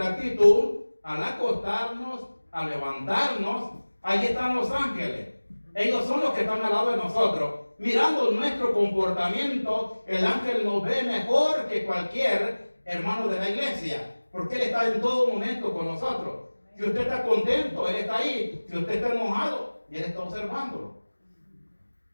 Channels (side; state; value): both; inverted; correlation -1.00